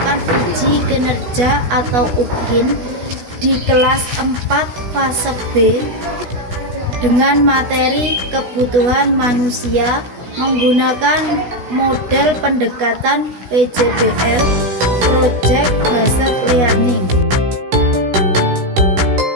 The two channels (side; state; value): left; late; 16 ms